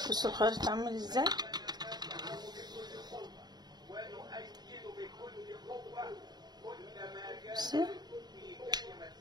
بصوا الخيط عامل ازاي.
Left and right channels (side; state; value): left; late; 0.20 ms